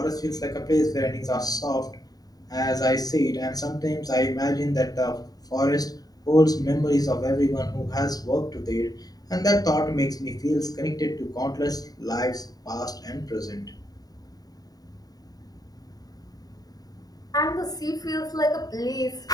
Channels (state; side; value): late; right; 0.18 ms